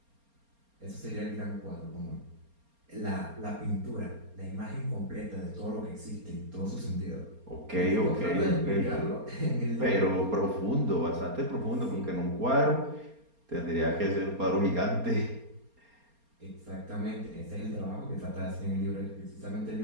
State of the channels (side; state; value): left; late; 4.3 ms